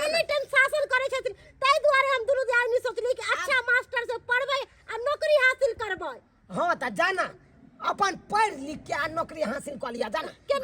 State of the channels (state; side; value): identical; both; correlation 1.00